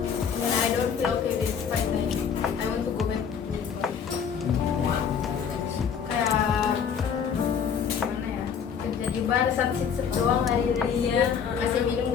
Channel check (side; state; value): right; quieter; 7.2 dB